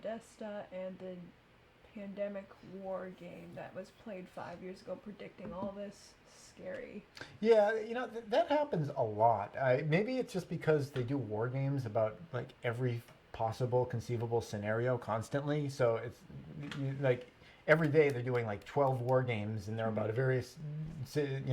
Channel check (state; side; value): identical; both; correlation 1.00